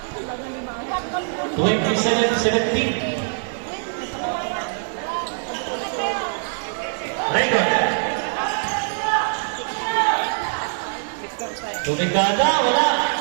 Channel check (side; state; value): left; silent; 63 dB below the other